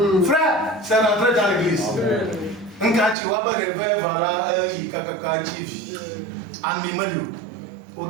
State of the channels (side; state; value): left; drops out; at 3.2 s